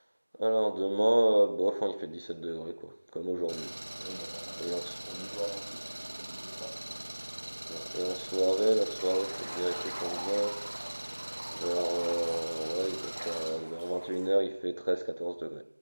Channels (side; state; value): both; inverted; correlation -1.00